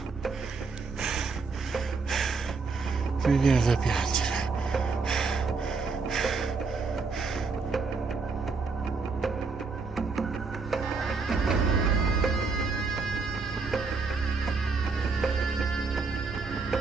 Mi viene da piangere.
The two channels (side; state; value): left; quieter; 4.5 dB